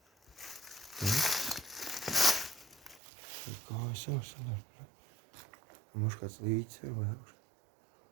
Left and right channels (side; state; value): left; drops out; at 3.0 s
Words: Tur kājas jau sanāk. Mums kāds līdzi ir vai augš.